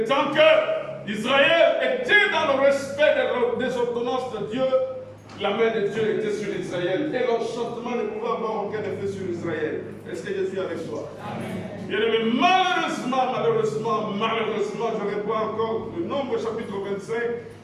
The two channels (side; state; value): both; identical; correlation 1.00